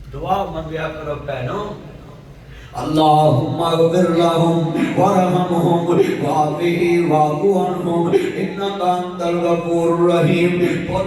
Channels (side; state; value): both; identical; correlation 1.00